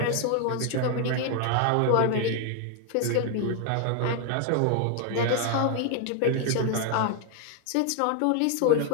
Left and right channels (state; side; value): different; both; correlation 0.00